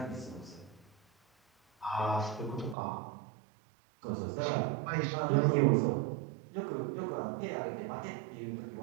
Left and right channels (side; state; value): left; drops out; at 2.8 s